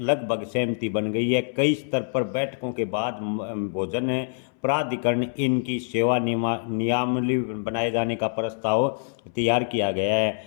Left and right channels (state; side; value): silent; right; 62 dB below the other